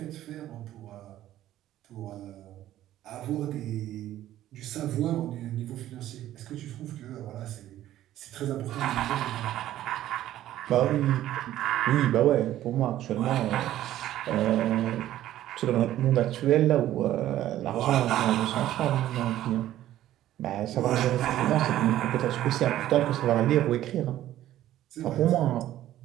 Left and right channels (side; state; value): left; quieter; 13.3 dB